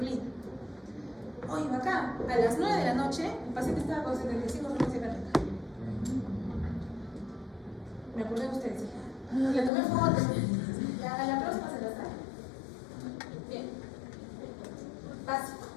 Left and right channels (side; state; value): right; drops out; at 9.7 s